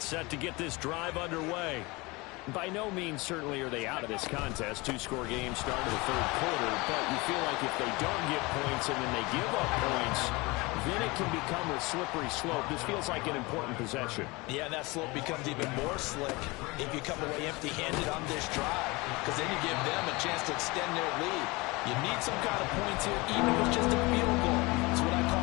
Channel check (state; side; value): quieter; right; 24.2 dB